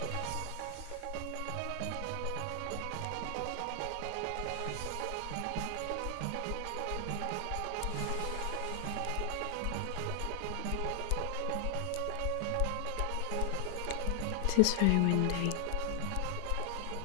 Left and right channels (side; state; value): both; different; correlation 0.00